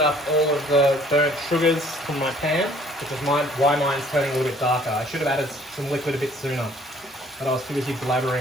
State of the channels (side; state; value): both; normal; correlation 0.58